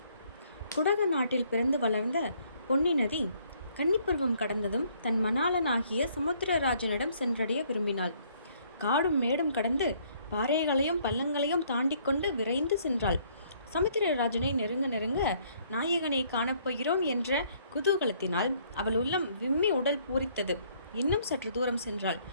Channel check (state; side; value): inverted; both; correlation -0.65